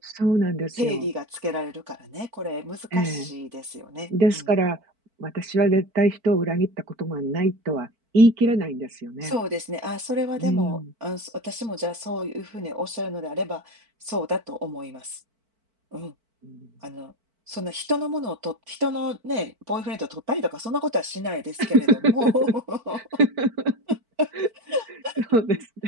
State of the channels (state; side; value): late; left; 4.5 ms